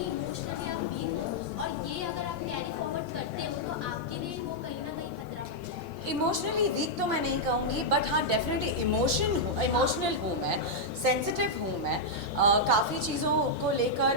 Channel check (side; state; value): both; normal; correlation -0.05